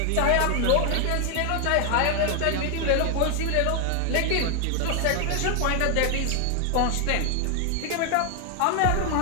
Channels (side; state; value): both; different; correlation 0.00